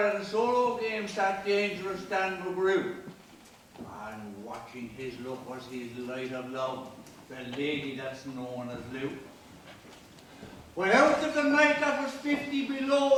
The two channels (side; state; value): both; identical; correlation 1.00